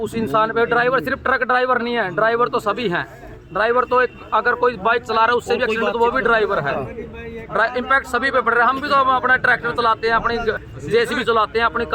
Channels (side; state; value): both; identical; correlation 1.00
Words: इंसान पे, ड्राइवर सिर्फ ट्रक ड्राइवर नहीं है, ड्राइवर तो सभी हैं। ड्राइवर तो एक अगर कोई बाइक चला रहा है उससे भी एक्सीडेंट तो वो भी ड्राइवर है। इम्पैक्ट सभी पे पड़ रहा है। हम भी तो अपना ट्रैक्टर चलाते हैं, अपनी जेसीबी चलाते हैं, अपनी